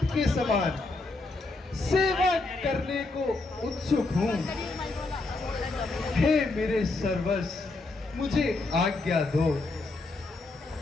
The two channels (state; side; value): quieter; right; 3.3 dB